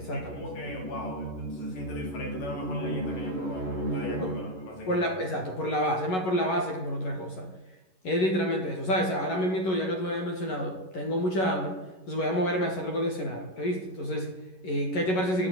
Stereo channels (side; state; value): right; late; 11 ms